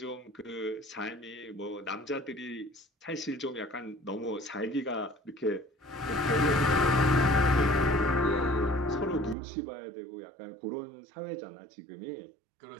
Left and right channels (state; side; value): drops out; left; at 9.3 s